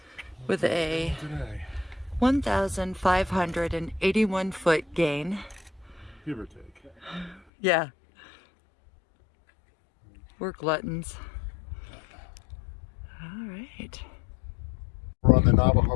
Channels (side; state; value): right; drops out; at 7.4 s